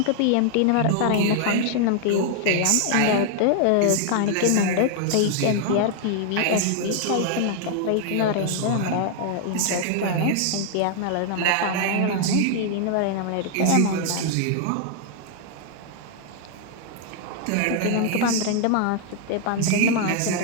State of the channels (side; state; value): both; different; correlation 0.00